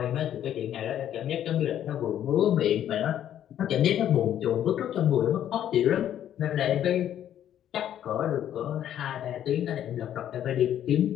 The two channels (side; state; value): right; quieter; 10.7 dB